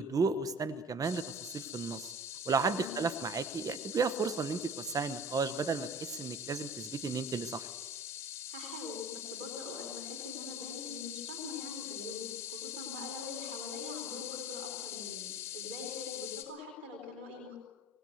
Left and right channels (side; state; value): both; normal; correlation 0.43